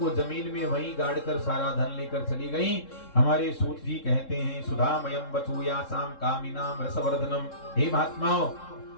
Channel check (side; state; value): right; late; 3.7 ms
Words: जमीन में वहीं गाड़कर सारा धन लेकर चली गईं। हमारे सूत जी कहते हैं, सुधामयम वचूयासाम कामिनाम रसवर्धनम। हे महात्माओं,